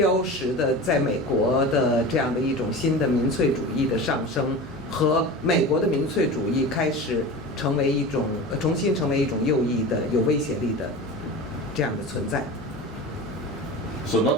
识的在美国的这样的一种新的民粹主义的上升，和美国的民粹主义开始重新成为一种右翼的有威胁力的这样的存在。So not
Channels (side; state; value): both; normal; correlation 0.32